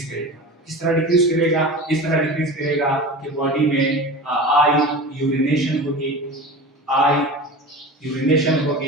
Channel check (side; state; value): both; normal; correlation 0.32